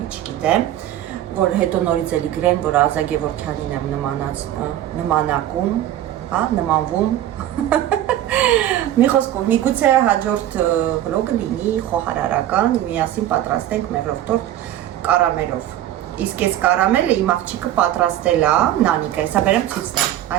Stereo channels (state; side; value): quieter; left; 12.6 dB